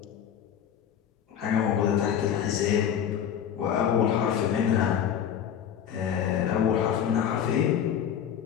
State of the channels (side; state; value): right; quieter; 9.0 dB